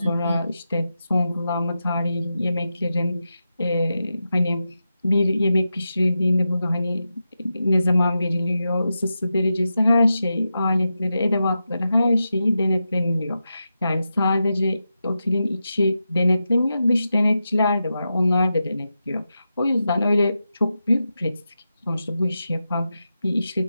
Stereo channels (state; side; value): inverted; both; correlation -0.89